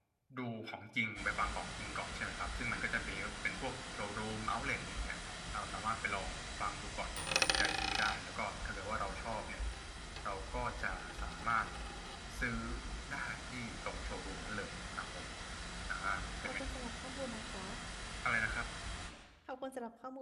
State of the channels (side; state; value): both; identical; correlation 1.00